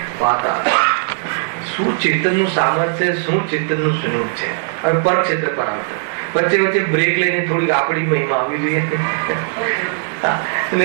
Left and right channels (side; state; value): left; silent; digital silence